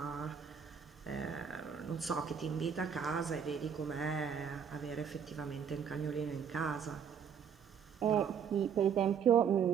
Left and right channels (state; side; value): quieter; left; 7.4 dB